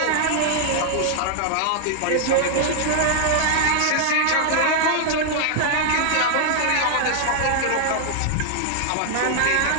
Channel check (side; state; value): both; different; correlation -0.01